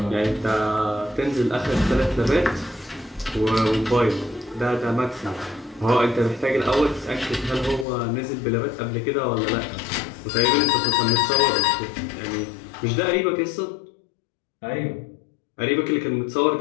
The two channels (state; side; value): drops out; right; at 7.9 s